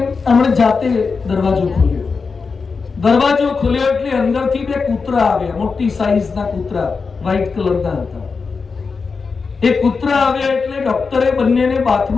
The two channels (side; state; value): right; quieter; 4.9 dB